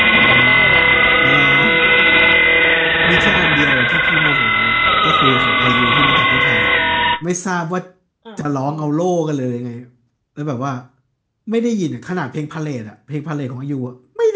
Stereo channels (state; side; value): identical; both; correlation 1.00